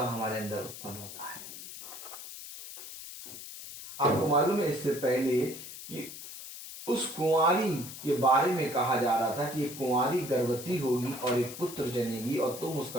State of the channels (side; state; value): left; noise; hiss, 12 dB below the sound